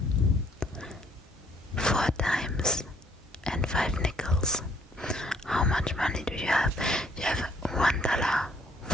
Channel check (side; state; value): both; normal; correlation 0.63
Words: 4 times and 5 nickels, how much money do you have? You have